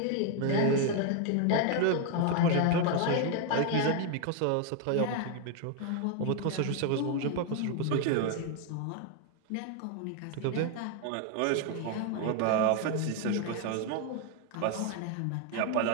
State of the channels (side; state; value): both; different; correlation 0.01